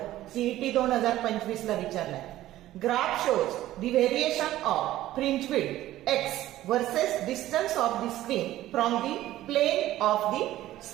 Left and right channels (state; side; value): quieter; left; 14.6 dB